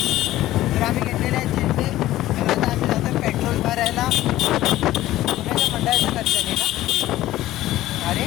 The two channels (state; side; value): quieter; right; 15.1 dB